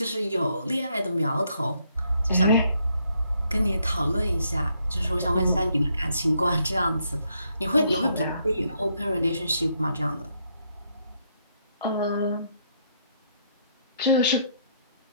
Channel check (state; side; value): inverted; both; correlation -0.73